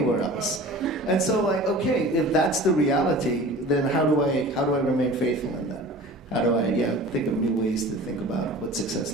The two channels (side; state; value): both; normal; correlation 0.40